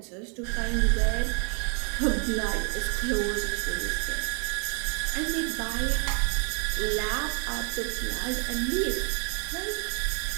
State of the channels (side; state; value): left; quieter; 39.5 dB